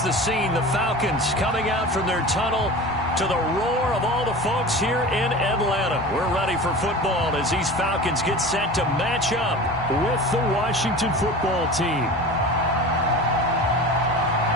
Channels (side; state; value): both; normal; correlation 0.34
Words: the scene. The Falcons coming out from their tunnel to the roar of all the folks here in Atlanta. We're ready for football as these Falcons get set to match up with the Washington football team.